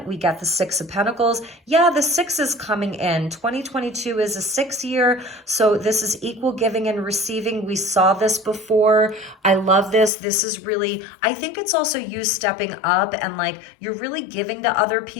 we got the Six of Pentacles. Yeah, the 6 is coming in. 2022 is a 6 year, so this is equal giving and receiving. We saw this before. I love this. This is really, I think it's also you stepping up and like you're really giving to other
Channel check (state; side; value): drops out; right; at 10.1 s